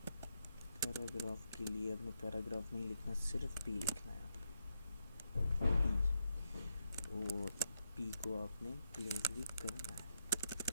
के लिए अपने पैराग्राफ नहीं लिखना, सिर्फ P लिखना है। P, और P को आपने क्लोज भी करना है।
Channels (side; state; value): both; inverted; correlation -0.83